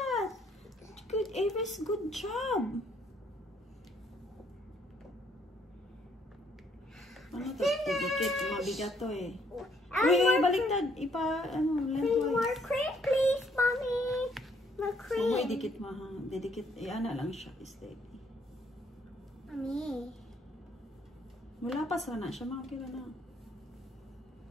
Good, Avis, good job! Ano to? Didikit, mabigat to eh. Uy, baliktad. Need more cream, please, Mommy. More cream. Uy, dikit mo ha. Didikit, ana lang siya. Steady. Mommy. Wala pa sana siya, mga kila na.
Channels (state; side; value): normal; both; correlation 0.67